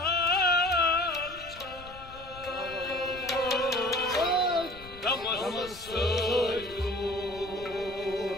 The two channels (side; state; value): left; noise; rumble, 18 dB below the sound